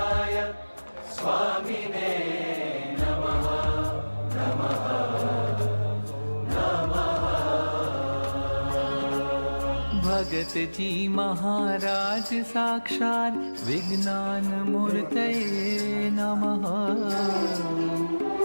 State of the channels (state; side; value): inverted; both; correlation -1.00